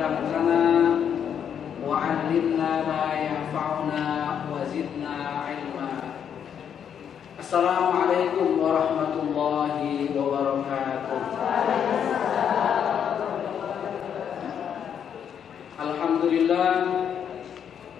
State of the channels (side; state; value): right; quieter; 8.3 dB